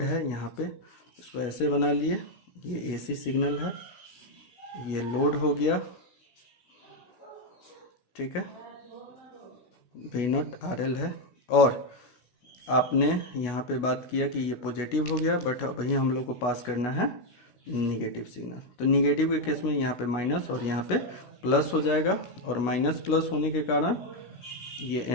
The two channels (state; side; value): late; right; 16 ms